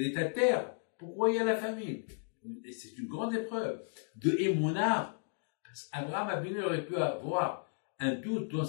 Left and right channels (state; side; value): silent; right; digital silence